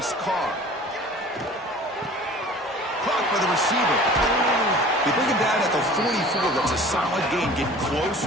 Carr. Caught by the receiver. They bring him down at the 44. That's a solid gain. Getting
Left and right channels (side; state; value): both; normal; correlation 0.45